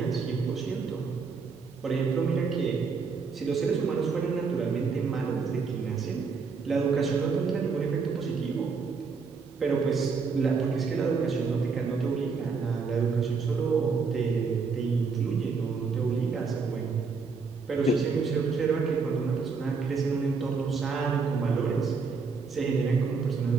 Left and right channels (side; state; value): left; quieter; 5.0 dB